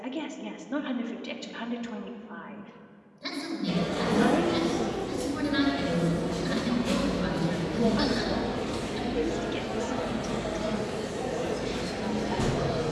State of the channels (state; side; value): identical; both; correlation 1.00